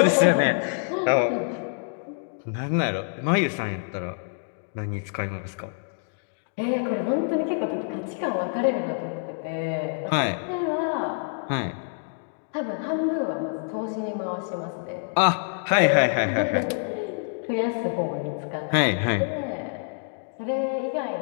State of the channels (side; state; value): right; silent; digital silence